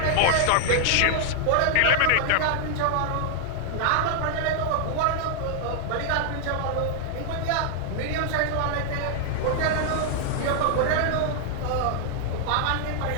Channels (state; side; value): different; both; correlation 0.00